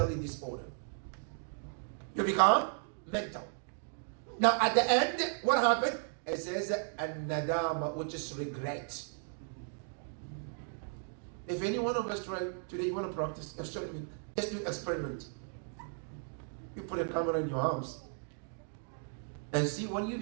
disordered. You become mental. Now at the end, what happened? It says an-nadama, which is regret. If any one of us try today, you want to practice, let's do an experiment. You put a camera in your house and see when you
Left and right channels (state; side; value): silent; left; 54 dB below the other